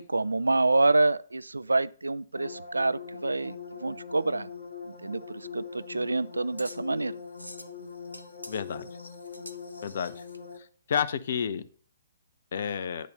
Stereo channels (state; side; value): inverted; both; correlation -0.90